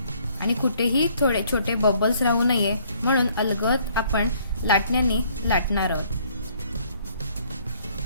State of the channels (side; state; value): both; inverted; correlation -0.62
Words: आणि कुठेही थोडे छोटे बबल्स राहू नये म्हणून अलगद आपण लाटण्याने लाटणार आहोत.